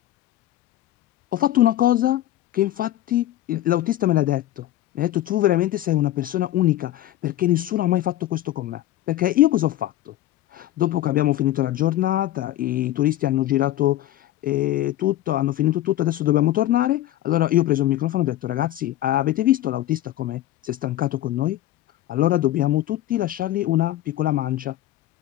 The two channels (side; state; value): right; quieter; 14.1 dB